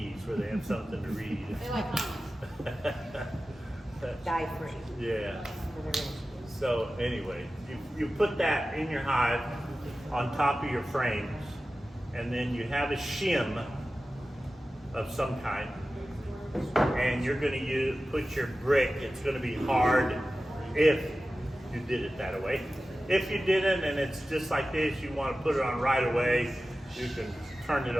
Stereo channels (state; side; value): normal; both; correlation 0.95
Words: where they have something to read. They like comments. Dye free. Yeah. So anyway, you put that in your hive on top of your frames, and then you have a shim of some kind, and you're going to put your brick. It's going to be hard if you did it that way. If you didn't, and it's just like this, you want to put it on right away, you can turn it